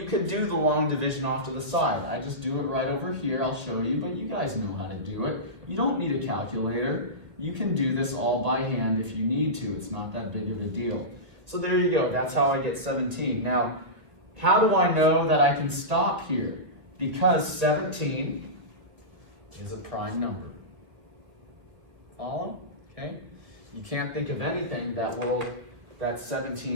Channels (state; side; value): late; left; 1.5 ms